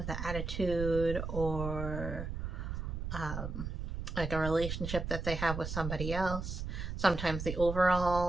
the attitude, or like a relationship that they have with somebody else. Sometimes the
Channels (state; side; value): noise; right; rumble, 5 dB below the sound